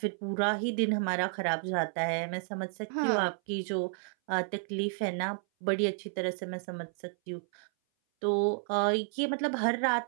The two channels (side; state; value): left; silent; 57 dB below the other